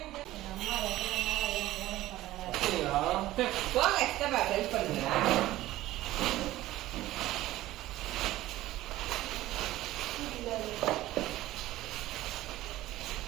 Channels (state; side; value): quieter; left; 15.8 dB